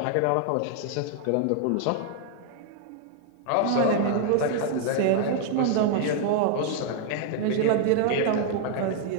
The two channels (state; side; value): different; both; correlation 0.00